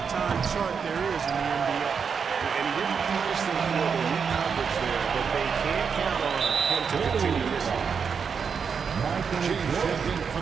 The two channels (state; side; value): quieter; left; 6.2 dB